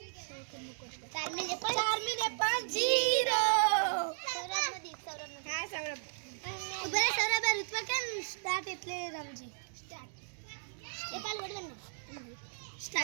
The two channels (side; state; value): left; silent; digital silence